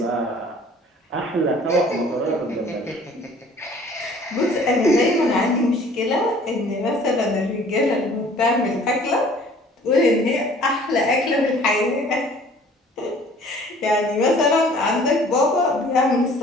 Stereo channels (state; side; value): normal; both; correlation 0.52